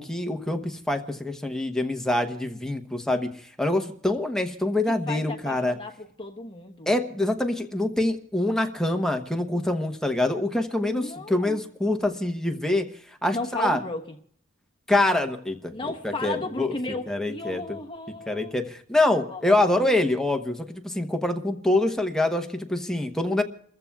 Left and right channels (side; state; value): both; normal; correlation 0.79